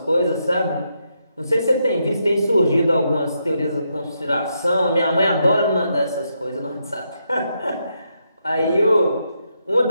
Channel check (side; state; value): both; inverted; correlation -0.81